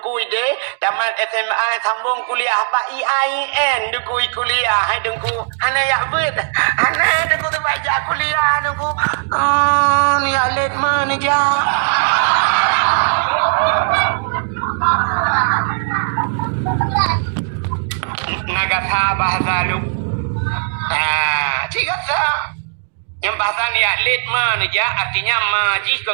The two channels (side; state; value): left; silent; digital silence